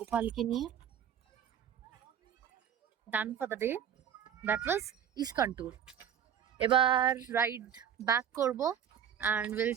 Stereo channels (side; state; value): left; quieter; 9.1 dB